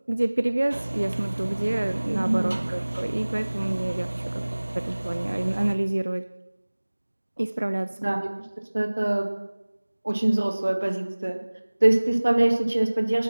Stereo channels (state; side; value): inverted; both; correlation -1.00